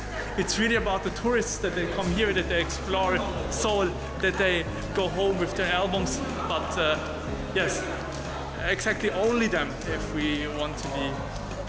It's really about the tourists that they come here, that they explore Seoul, that they go home with their albums. But yes, exactly only them, if we want to be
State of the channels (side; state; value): both; identical; correlation 1.00